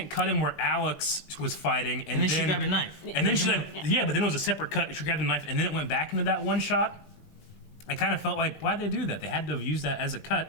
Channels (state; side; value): late; right; 20 ms